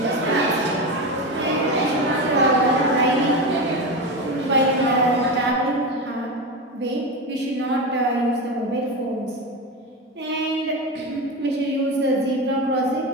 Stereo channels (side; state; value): both; normal; correlation 0.20